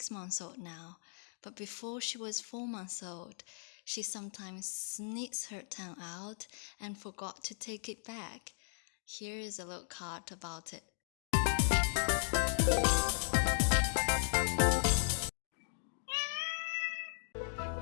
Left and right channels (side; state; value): right; silent; digital silence